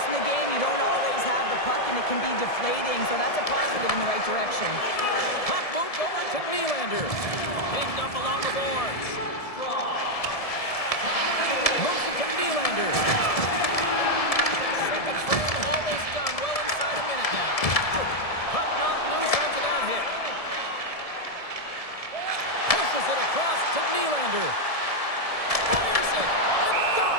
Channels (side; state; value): right; late; 1.7 ms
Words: the game, you don't always have the puck, and it can be deflating, so that's a positive in the right direction. Puck moved over to Nylander. Pinned up along the boards. Moves it to Nylander. Second frame almost done. Well inside a minute now. Puck knocked loose after that hit. Pushes it across to Nylander. Fires it, and that